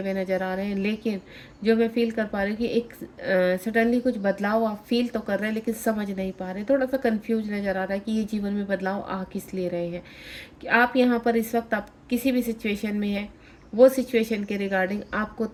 नज़र आ रहे हैं, लेकिन जो मैं फ़ील कर पा रही हूँ कि एक सडनली कुछ बदलाव आप फ़ील तो कर रहे हैं लेकिन समझ नहीं पा रहे, थोड़ा सा कन्फ्यूज नज़र आ रहा है कि ये जीवन में बदलाव आ किस लिए रहे हैं। कि आप यहाँ पर इस वक्त आप किसी भी सिचुएशन में हैं, वो सिचुएशन के रिगार्डिंग आपको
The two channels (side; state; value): both; identical; correlation 1.00